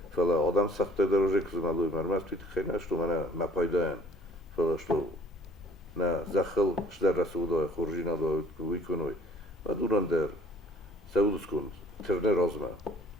فلا آدم سخت درجه کزمالوی مرمز توی خیلی نشتو منه مپایدان فلا شتو نه زخل شدر رسوله خورجینا داد ویکنوی و دوران در سعودس کند ترنه رازمه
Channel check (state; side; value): normal; both; correlation 0.55